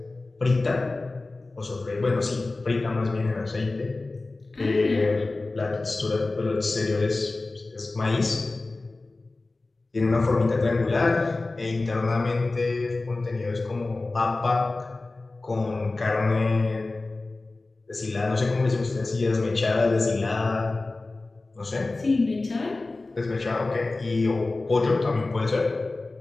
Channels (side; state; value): right; quieter; 3.3 dB